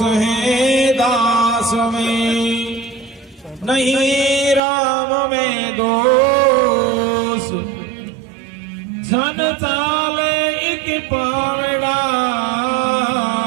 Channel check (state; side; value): drops out; left; at 4.6 s